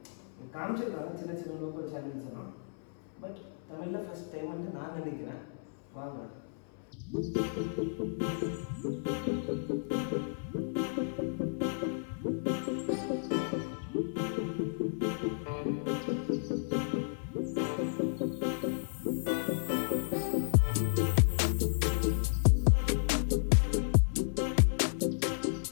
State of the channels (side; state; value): right; silent; 56 dB below the other